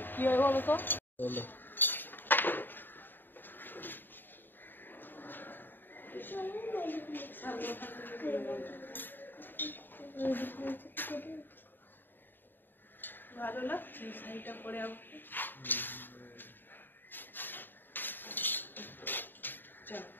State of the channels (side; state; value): right; late; 0.093 ms